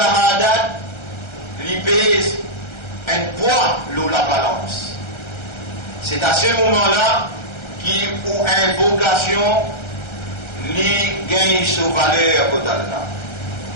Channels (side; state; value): right; late; 1.3 ms